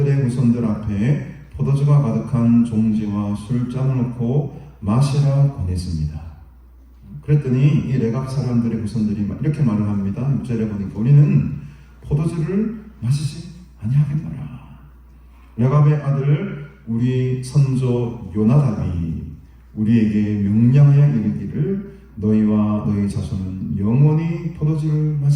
후손들 앞에 포도주가 가득한 종지와 술잔을 놓고 마시라 권했습니다. 그랬더니 이 레갑 사람들의 후손들이 이렇게 말을 합니다. 6절에 보니까 우리는 포도주를 마시지 아니하겠노라. 레갑의 아들 우리 선조 요나답이 우리에게 명령하여 이르기를 너희와 너희 자손은 영원히 포도주를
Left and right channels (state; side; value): identical; both; correlation 1.00